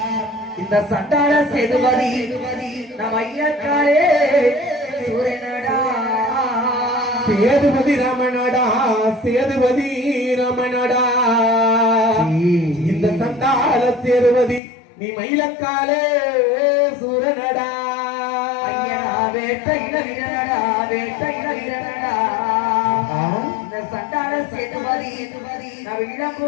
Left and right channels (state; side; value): drops out; right; at 14.6 s